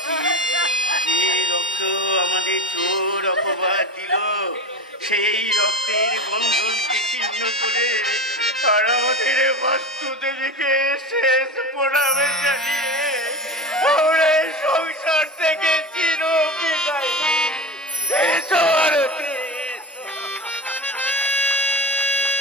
সেই রক্তের বন্ধনকে ছিন্ন করে আর আমাদের বাস্তু দেবীকে শেষ প্রণামে জানিয়ে আমরা এই সংসার থেকে চির বিদায় এসো আরতি।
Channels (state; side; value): normal; both; correlation 0.26